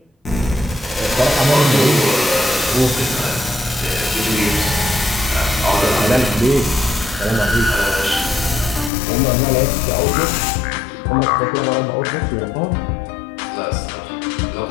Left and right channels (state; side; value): drops out; right; at 8.9 s